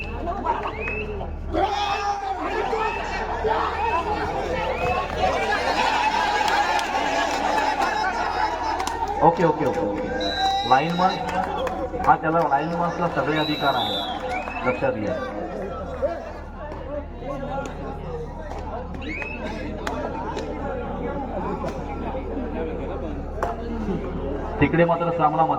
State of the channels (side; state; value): both; identical; correlation 1.00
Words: Okay okay okay okay. Lineman हा, त्याला लाईनमन्सला सगळे अधिकार आहे, लक्षात घ्या. तिकडे मात्र सामना